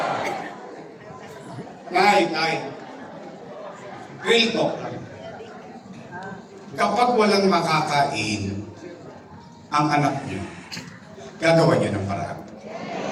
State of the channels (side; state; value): both; identical; correlation 1.00